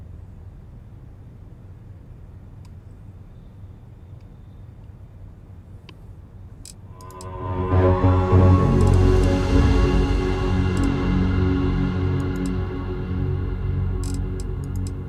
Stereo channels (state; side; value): identical; both; correlation 1.00